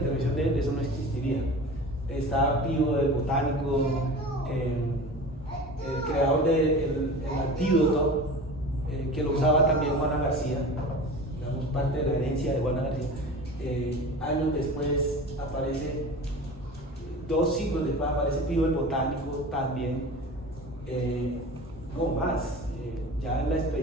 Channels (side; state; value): both; normal; correlation 0.36